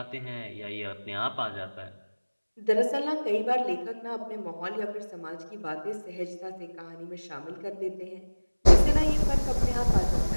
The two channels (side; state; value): both; inverted; correlation -1.00